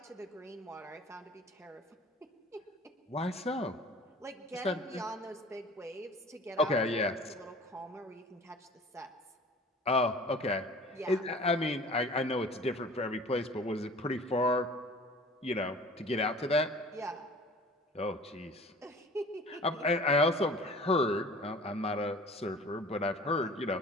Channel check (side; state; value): both; normal; correlation 0.45